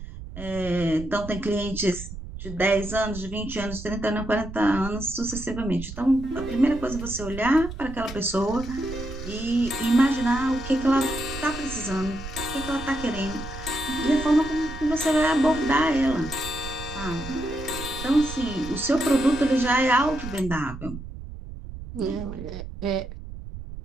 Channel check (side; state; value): right; noise; rumble, 11 dB below the sound